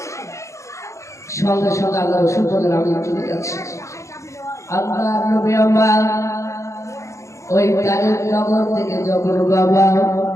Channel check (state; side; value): late; right; 0.15 ms